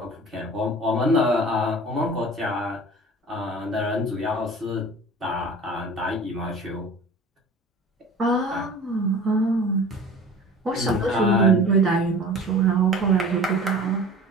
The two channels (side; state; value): both; normal; correlation 0.41